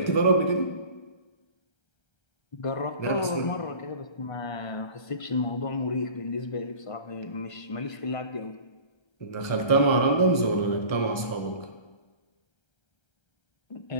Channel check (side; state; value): right; late; 1.3 ms